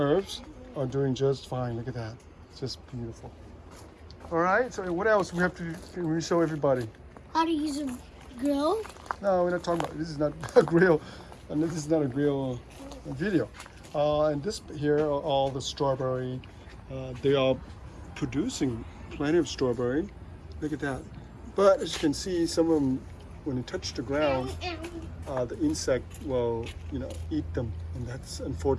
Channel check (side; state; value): both; identical; correlation 1.00